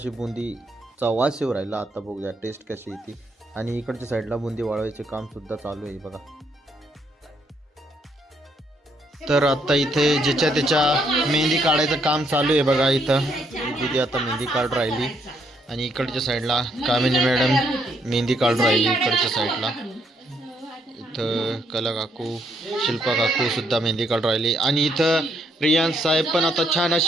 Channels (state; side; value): normal; both; correlation 0.73